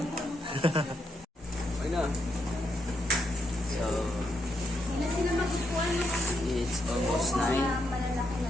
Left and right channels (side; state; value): both; normal; correlation 0.80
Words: Okay na. So, it's almost 9.